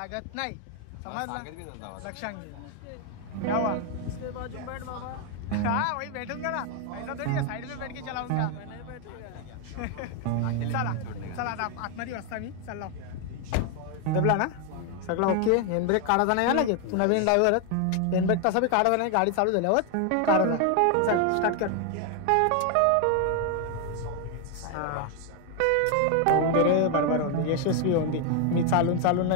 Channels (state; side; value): different; both; correlation 0.01